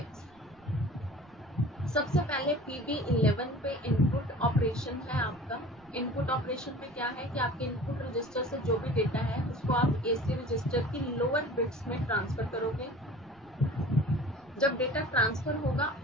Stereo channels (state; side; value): noise; right; rumble, 29 dB below the sound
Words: सबसे पहले PB11 पे इनपुट ऑपरेशन है आपका. इनपुट ऑपरेशन में क्या है कि आपके इनपुट रजिस्टर से जो भी डेटा है उसको आप AC रजिस्टर की लोअर बिट्स में ट्रांसफर करोगे. जब डेटा ट्रांसफर होगा